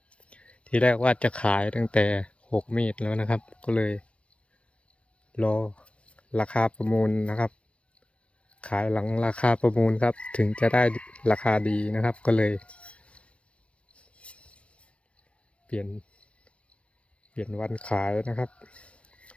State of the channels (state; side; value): late; right; 0.061 ms